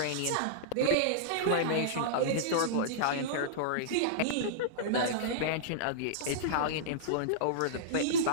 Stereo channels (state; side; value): different; both; correlation -0.02